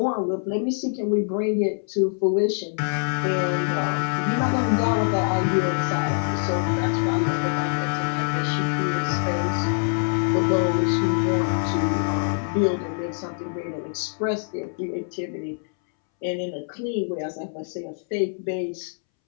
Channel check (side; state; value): right; silent; 62 dB below the other